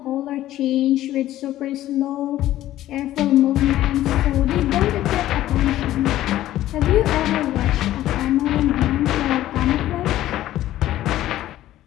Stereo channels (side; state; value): right; quieter; 14.0 dB